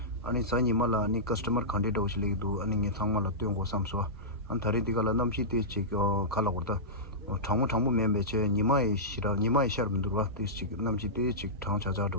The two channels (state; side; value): normal; both; correlation -0.15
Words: 아니 사니 말라 아니 커스터머 칸데도 오실리도 아니 게 정말로 땡고 삼소 안 다리디가 남시티 치고 갈라고다 장모 멤버체 니마이 샤름 들어와 티치 남시티 치